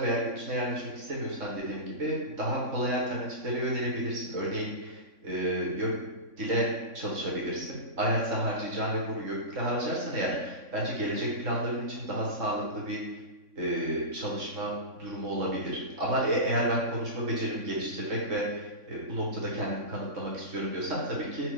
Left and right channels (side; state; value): left; late; 3.6 ms